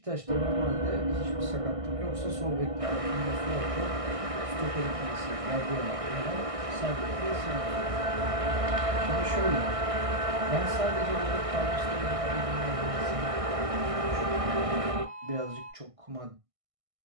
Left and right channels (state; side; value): late; left; 1.6 ms